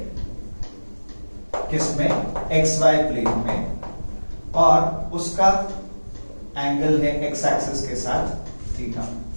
किसमें, एक्स वाई प्लेन में, और उसका एंगल है एक्स एक्सिस के साथ थीटा।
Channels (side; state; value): both; inverted; correlation -1.00